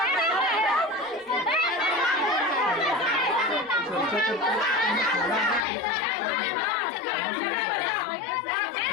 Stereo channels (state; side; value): drops out; right; at 5.7 s